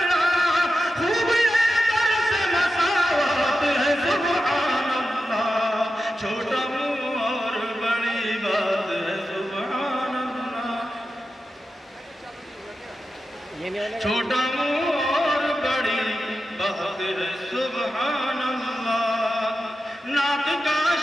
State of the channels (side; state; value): both; normal; correlation 0.90